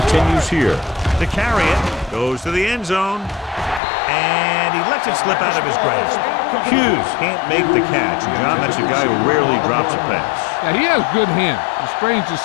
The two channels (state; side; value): drops out; right; at 3.8 s